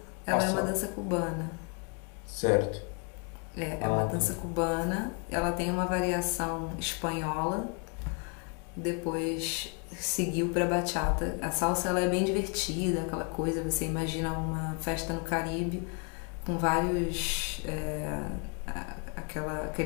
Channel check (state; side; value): quieter; right; 37.0 dB